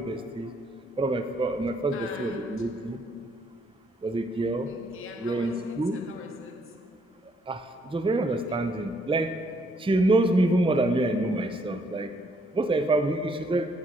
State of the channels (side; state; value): both; normal; correlation 0.70